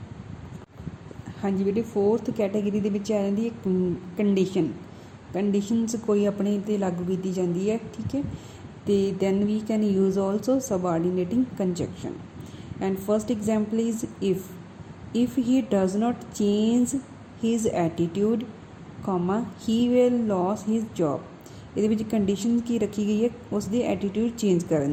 ਹਾਂਜੀ ਬੇਟੇ, fourth category ਦੇ ਵਿੱਚ ਆ ਜਾਂਦੀ ਹੈ ਕੰਡੀਸ਼ਨ। ਕੰਡੀਸ਼ਨਸ ਕੋਈ ਆਪਣੇ 'ਤੇ ਲਾਗੂ ਕੀਤੀ ਜਾਂਦੀ ਹੈ, ਠੀਕ ਹੈ। ਤੇ then we can use also subordinating conjunction। and first example is if he does not change his attitude comma he will lose his job। ਇਹਦੇ ਵਿੱਚ ਕੰਡੀਸ਼ਨ ਕੀ ਰੱਖੀ ਗਈ ਹੈ, ਉਸ ਦੀ ਐਟੀਟਿਊਡ ਚੇਂਜ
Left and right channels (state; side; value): identical; both; correlation 1.00